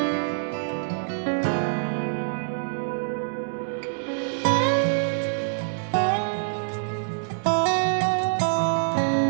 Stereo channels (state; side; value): silent; left; digital silence